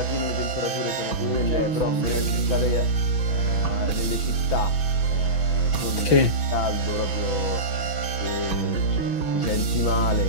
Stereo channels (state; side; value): late; right; 6.1 ms